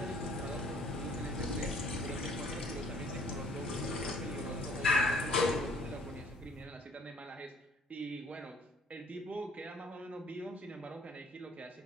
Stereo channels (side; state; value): both; normal; correlation 0.58